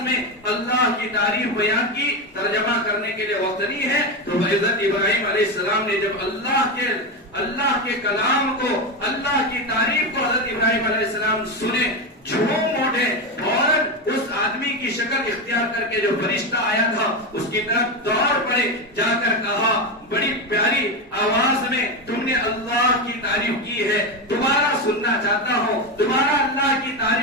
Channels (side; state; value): both; normal; correlation 0.14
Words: میں اللہ کی تعریف بیان کی, ترجمہ کرنے کے لیے وقت نہیں ہے, تو حضرت ابراہیم علیہ السلام نے جب اللہ کے کلام کو, اللہ کی تعریف کو حضرت ابراہیم علیہ السلام سنے, جھوم اٹھے اور اس آدمی کی شکل اختیار کر کے جو فرشتہ آیا تھا اس کی طرف دوڑ پڑے, جا کر کہا بڑی پیاری آواز میں تم نے اللہ کی تعریف کی ہے, دوبارہ سننا چاہتا ہوں, دوبارہ اللہ کی